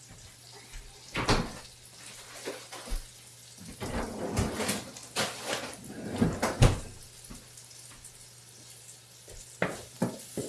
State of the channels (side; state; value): both; identical; correlation 1.00